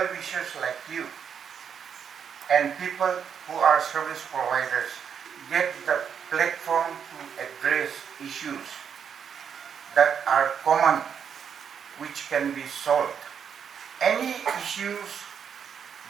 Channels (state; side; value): quieter; left; 7.5 dB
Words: like you and people who are service providers get the platform to address issues that are common, which can be solved any issues